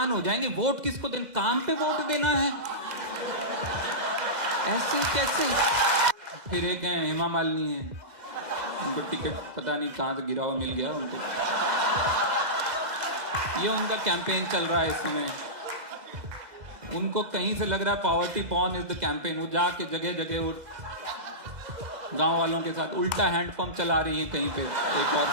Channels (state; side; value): late; left; 2.0 ms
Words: हो जाएंगे। वोट किसको देना? काम पे वोट देना है, ऐसे कैसे? फिर एक है हेमा मालिनी है, उनको टिकट पता नहीं कहां से गिरा हुआ मिल गया उनको, ये उनका कैंपेन चल रहा है इस समय। उनको कहीं से लग रहा है poverty porn is the campaign. वो जाके जगह जगह वो गांव वालों के साथ उल्टा हैंडपंप चला रही है कहीं पे। एक और